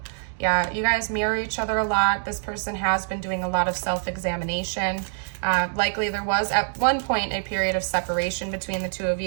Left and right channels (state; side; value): silent; left; digital silence